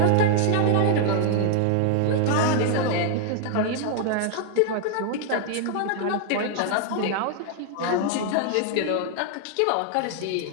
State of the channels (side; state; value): both; different; correlation 0.00